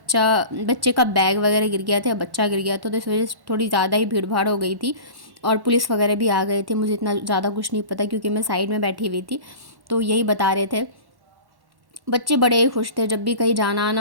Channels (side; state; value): left; late; 1.1 ms